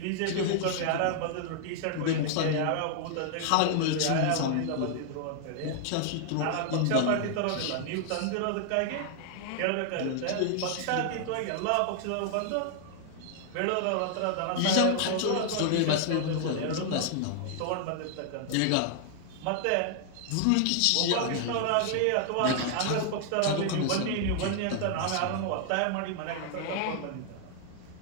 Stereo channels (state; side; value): different; both; correlation 0.00